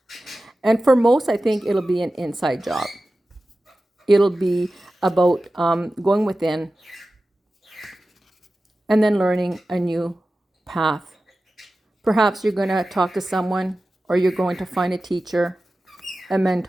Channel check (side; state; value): both; normal; correlation 0.95